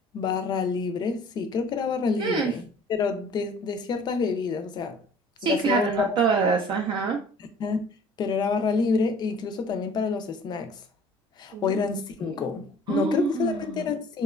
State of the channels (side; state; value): both; normal; correlation 0.51